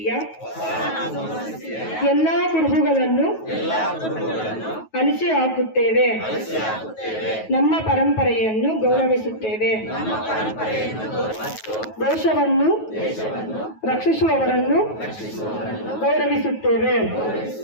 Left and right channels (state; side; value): late; right; 9.3 ms